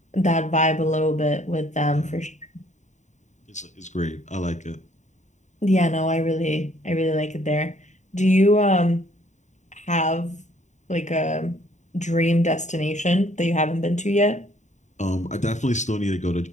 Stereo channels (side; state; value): right; late; 0.34 ms